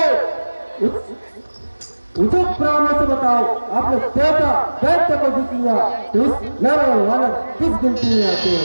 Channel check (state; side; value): inverted; both; correlation -1.00